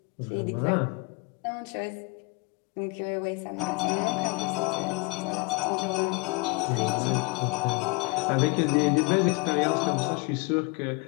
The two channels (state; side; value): quieter; right; 26.4 dB